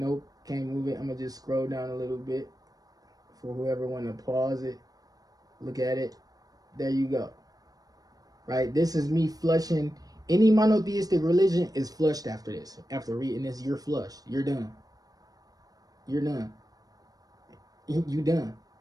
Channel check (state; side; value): late; left; 0.18 ms